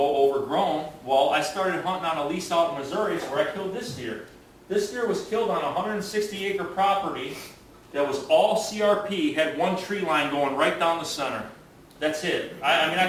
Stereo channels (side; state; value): both; identical; correlation 1.00